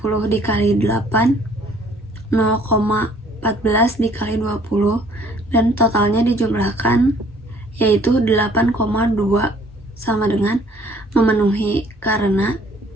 dikali 8, 0,14 dikali 20, dan totalnya dijumlahkan yaitu 8,2, sama dengan memenuhi karena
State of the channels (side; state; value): both; normal; correlation 0.58